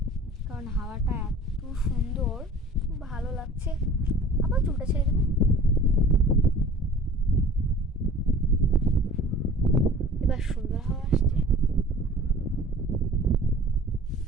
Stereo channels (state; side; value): normal; both; correlation 0.45